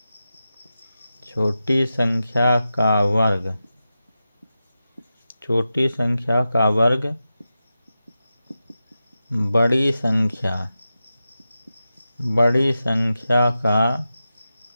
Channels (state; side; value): inverted; both; correlation -0.92